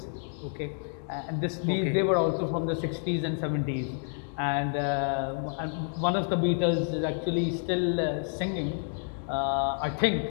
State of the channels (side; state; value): right; silent; 58 dB below the other